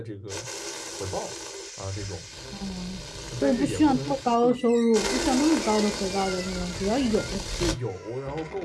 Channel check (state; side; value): identical; both; correlation 1.00